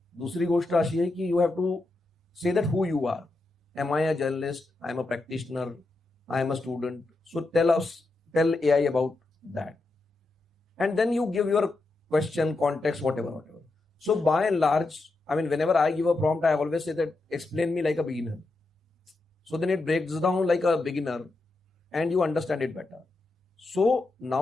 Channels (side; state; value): right; quieter; 3.1 dB